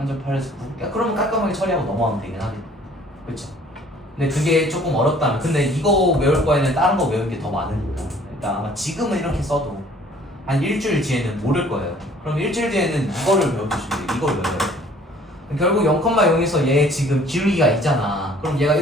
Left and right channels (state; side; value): normal; both; correlation 0.55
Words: 8에서 9? 야, 그러면 깔끔하게 처리하고 넘어가면 되긴 하겠다. 그쵸? 근데 그게 조금 어렵다면, 근데 이거 외울 거에는 다른 거 외우는 게 더 많으니까 일단 아마 지금은 이렇게 써도 한 일주일 뒤에는 모를 거예요. 그럼 일주일 뒤에는 이거를 외워주시면 돼요. 이걸 외워야 돼요. 결국 0,0에서 얘 지금 기울기가 있잖아. 그럼 얘가